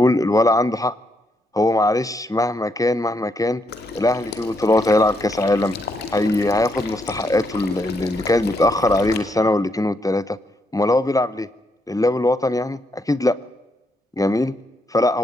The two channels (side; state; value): both; normal; correlation 0.77